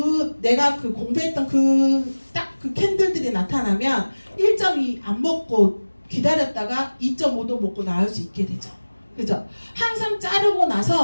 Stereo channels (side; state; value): both; inverted; correlation -1.00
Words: 내가 공부했던 딱 그 캔들들이 나타나면 1.2 안 먹고 기다렸다가 2.5도 먹고 나올 수 있게 되죠. 그죠? 항상 자르고